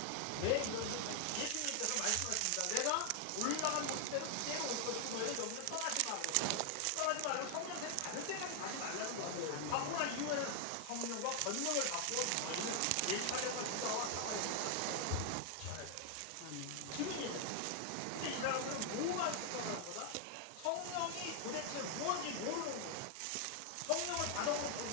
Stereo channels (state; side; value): different; both; correlation 0.00